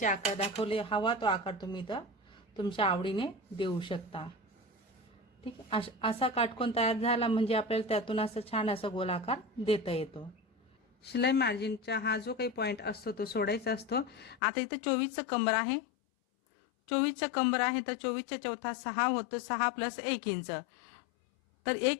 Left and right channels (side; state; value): right; drops out; at 14.4 s